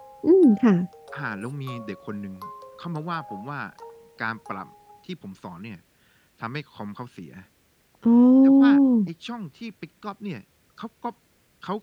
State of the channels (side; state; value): both; identical; correlation 1.00